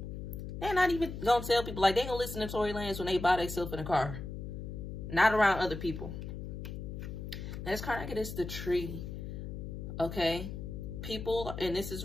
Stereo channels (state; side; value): noise; left; hum, 7 dB below the sound